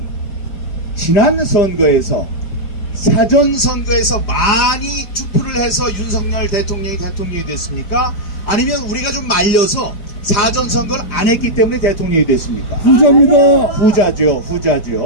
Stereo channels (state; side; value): late; right; 4.9 ms